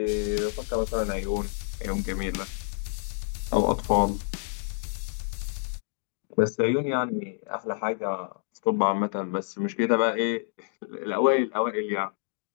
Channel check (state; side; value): silent; right; digital silence